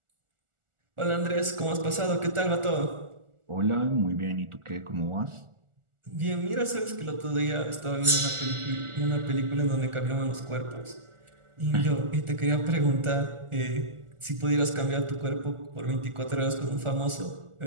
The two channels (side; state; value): left; late; 1.4 ms